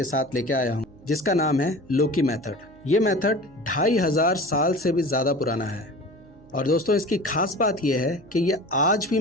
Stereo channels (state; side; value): noise; right; hum, 25 dB below the sound